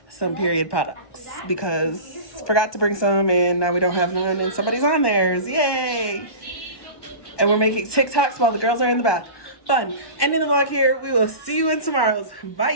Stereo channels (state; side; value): late; right; 1.2 ms